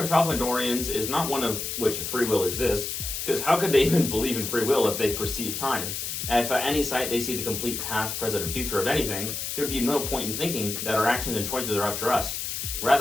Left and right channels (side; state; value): left; noise; hiss, 4 dB below the sound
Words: of Tralfamadorians is not one of which free will exists, because how could they even believe in free will if they perceive time? And if at any sight they see the complete past, present, and future of anything, there would be no point in thinking that our actions and choices are up to us.